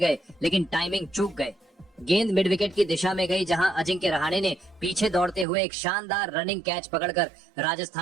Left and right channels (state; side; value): drops out; left; at 5.5 s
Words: लेकिन टाइमिंग चूक गए। गेंद मिड विकेट की दिशा में गई, जहां अजिंक्य रहाणे ने पीछे दौड़ते हुए एक शानदार रनिंग कैच पकड़कर